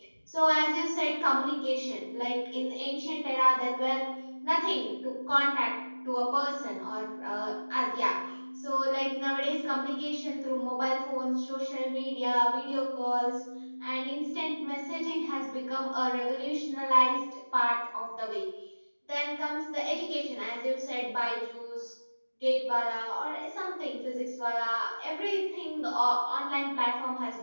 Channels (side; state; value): both; inverted; correlation -1.00